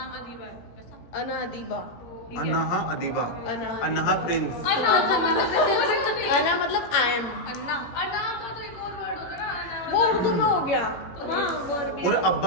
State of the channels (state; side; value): late; right; 17 ms